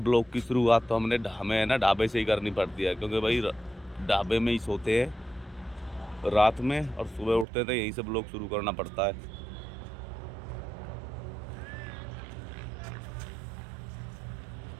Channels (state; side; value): drops out; left; at 7.5 s